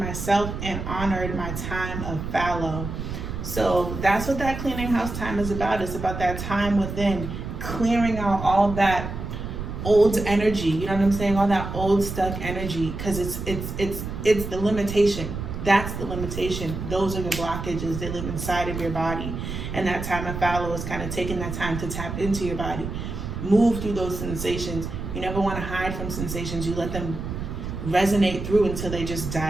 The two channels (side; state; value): right; noise; rumble, 6 dB below the sound